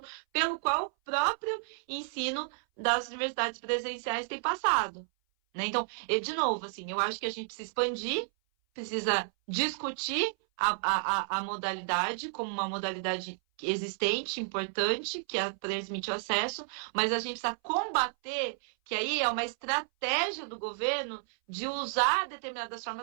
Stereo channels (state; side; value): silent; left; 57 dB below the other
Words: pelo qual o próprio ensino das universidades presenciais tem passado. Né? Então, de novo, assim, eu acho que a gente precisa expandir, precisa discutir a modalidade como uma modalidade existente, importante, que permite o acesso, mas a gente precisa combater, que aí é uma estratégia do governo de usar determinadas